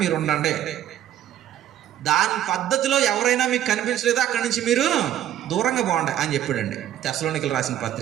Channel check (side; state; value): left; quieter; 11.5 dB